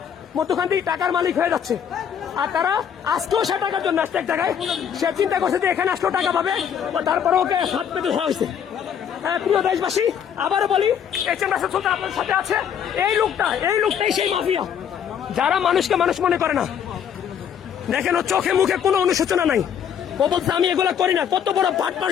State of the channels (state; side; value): quieter; right; 8.4 dB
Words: মধ্যখান থেকে টাকার মালিক হয়ে যাচ্ছে। আর তারা আসতেও সে টাকার জন্য আসছে এক জায়গায়, সে চিন্তা করছে যে এখানে আসলেও টাকা পাবে, তারপরে ওকে হাত পেতে ধরা হয়েছে। প্রিয় দেশবাসী, আবারও বলি, HM রাসেল সুলতান আপনার সাথে আছে। এই লোকটাই সেই মাফিয়া, যারা মানুষকে মানুষ মনে করে না। দেখেন, ও চোখে মুখে কোনো অনুশোচনা নাই। ও বলছে আমি এগুলা করি না। কত বড় পাট